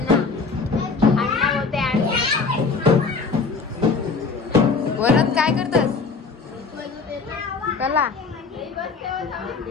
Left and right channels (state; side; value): quieter; right; 4.5 dB